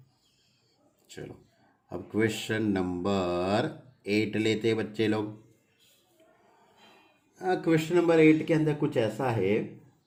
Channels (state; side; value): identical; both; correlation 1.00